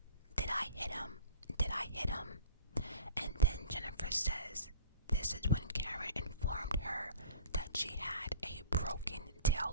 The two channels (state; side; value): inverted; both; correlation -0.43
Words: I hit him? Did I hit him? And then Jennifer says this is when Karen informed her that she had a broken